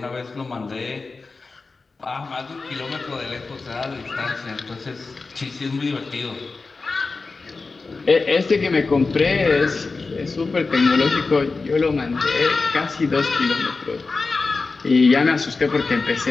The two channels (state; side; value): quieter; right; 4.0 dB